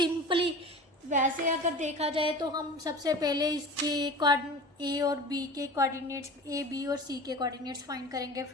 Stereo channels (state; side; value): normal; both; correlation 0.36